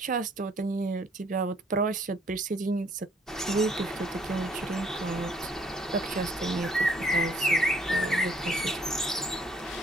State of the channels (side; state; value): both; normal; correlation 0.64